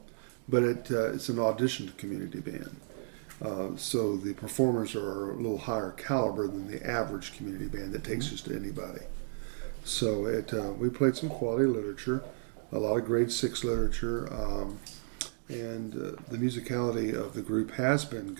but it's an auditioned community band. So the performers are a little higher caliber than the average community band that takes just anybody. So we played some quality literature, a lot of grade 6 literature, and the musicality of the group has been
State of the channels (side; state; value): left; silent; digital silence